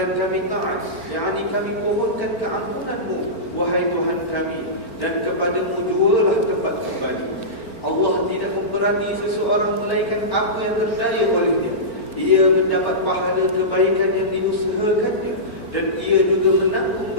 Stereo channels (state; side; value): late; right; 4.4 ms